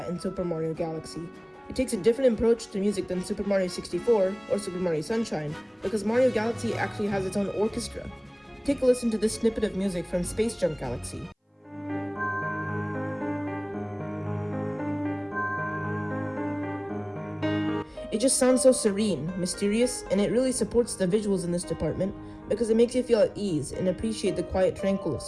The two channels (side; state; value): both; identical; correlation 1.00